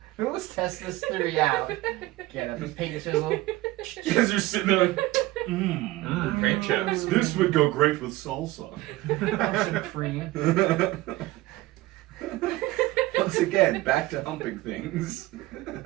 Let's test this theory out. Get up this paint chisel. You guys are sitting there like, paint chips. this would go great with salsa. Have some cream. Once again, back to humping things.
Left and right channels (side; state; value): left; quieter; 18.3 dB